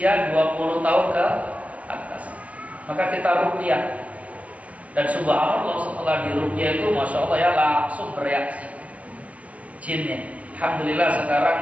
20 tahun ke atas. Maka kita ruqyah, dan subhanallah setelah diruqyah itu masya Allah ya langsung bereaksi jinnya. Alhamdulillah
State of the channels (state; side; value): late; left; 0.067 ms